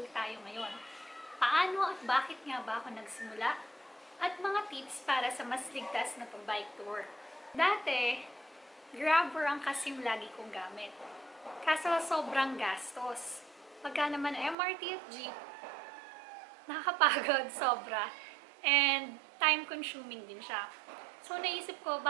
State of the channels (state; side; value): drops out; left; at 14.6 s